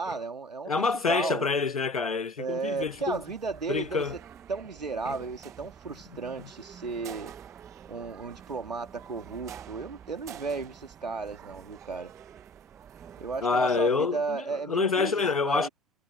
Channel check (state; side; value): normal; both; correlation 0.46